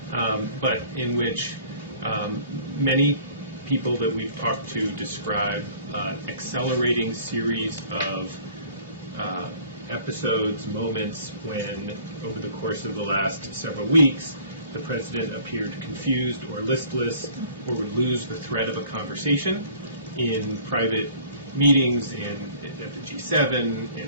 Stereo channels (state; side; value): inverted; both; correlation -0.51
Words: but in which many people that we've talked to describe an accelerating series of episodes, moments when, over the course of the last several weeks, the president appeared confused or listless or would lose the thread of a conversation in private meetings at the G7,